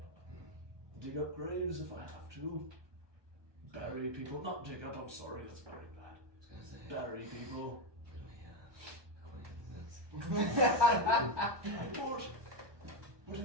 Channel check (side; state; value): left; late; 1.2 ms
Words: dig up graves if I have to, bury people. Not dig up. I'm sorry, that's very bad. I was gonna say, Bury people. can we, acquaintances? What do